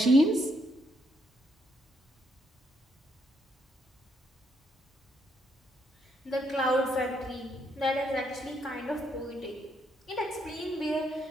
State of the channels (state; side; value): normal; both; correlation 0.74